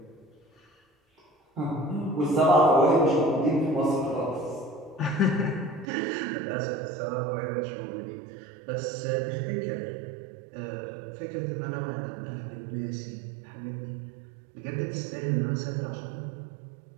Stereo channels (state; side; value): drops out; left; at 5.9 s